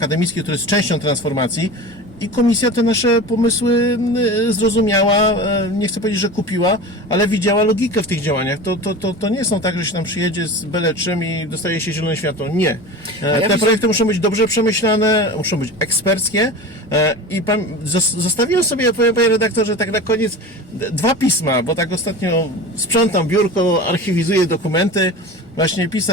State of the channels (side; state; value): both; normal; correlation 0.32